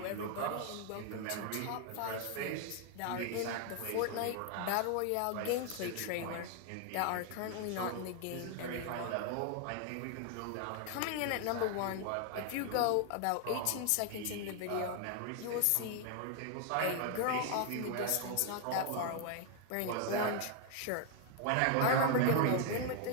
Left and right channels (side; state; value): both; different; correlation 0.00